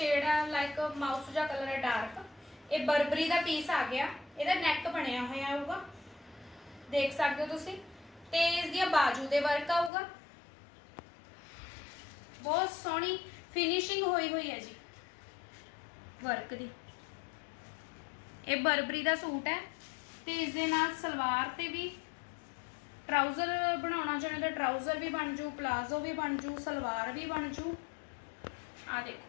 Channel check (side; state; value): right; drops out; at 9.9 s